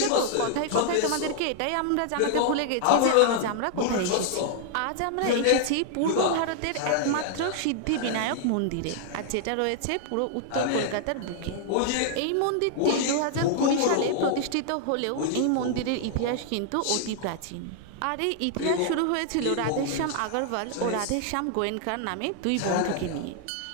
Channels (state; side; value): different; both; correlation -0.01